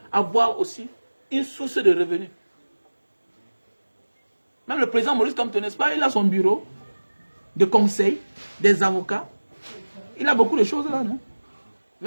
avoir aussi une source de revenus. Même le président Maurice Kamto, n'est-ce pas, il a son bureau de conseil, des avocats. Il a beaucoup de choses là, non?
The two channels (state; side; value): inverted; both; correlation -1.00